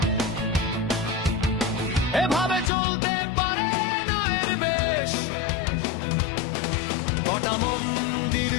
এভাবে চলতে পারে না এর বেশ। কটা মন্দির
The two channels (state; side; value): drops out; right; at 2.7 s